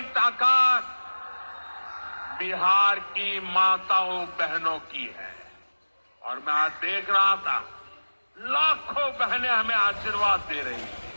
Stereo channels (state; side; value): inverted; both; correlation -1.00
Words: ताकत बिहार की माताओं बहनों की है। और मैं आज देख रहा था लाखों बहनें हमें आशीर्वाद दे रही